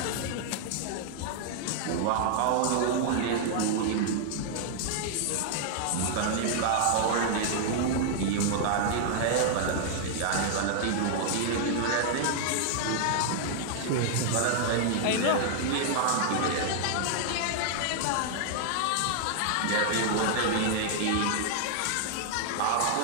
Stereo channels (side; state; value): both; different; correlation -0.01